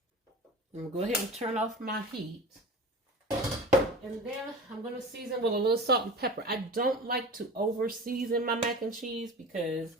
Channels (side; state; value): both; normal; correlation 0.35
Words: I'm going to go ahead and turn off my heat. And then I'm going to season with a little salt and pepper. I don't like to over season my mac and cheese because,